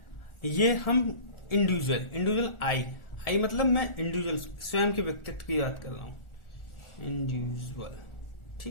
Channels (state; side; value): late; right; 1.4 ms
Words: ये हम इंडिविजुअल आई मतलब मैं इंडिविजुअल स्वयं के व्यक्तित्व की बात कर रहा हूं। इंडिविजुअल,